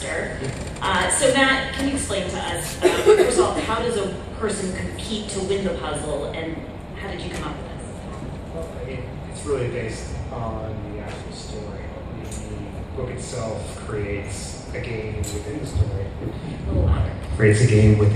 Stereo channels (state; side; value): identical; both; correlation 1.00